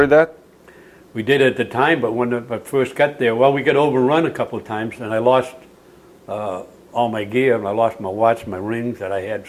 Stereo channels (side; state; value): both; identical; correlation 1.00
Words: that? We did at the time, but when I first got there, well, we got overrun a couple of times, and I lost all my gear. And I lost my watch, my rings that I had,